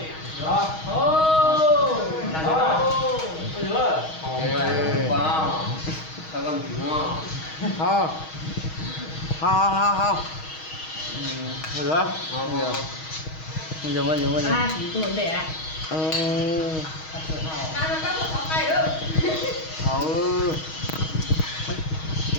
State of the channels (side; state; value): right; late; 6.3 ms